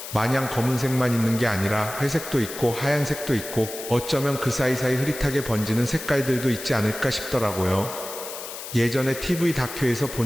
마냥 검은색만 있는 게 아니라 회색도 있고 하얀색도 있고 어쩌면 그 사이사이 흐릿하게 번지는 색깔들도 있지 않을까 싶더라고요. 예전에 TV 다큐에서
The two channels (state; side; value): noise; left; hiss, 10 dB below the sound